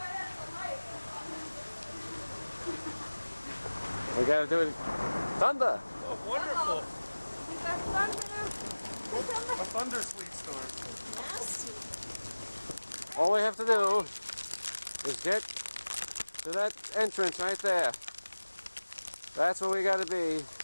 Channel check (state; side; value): inverted; both; correlation -1.00